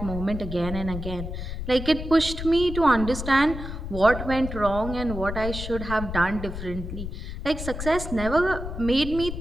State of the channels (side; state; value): left; noise; rumble, 7 dB below the sound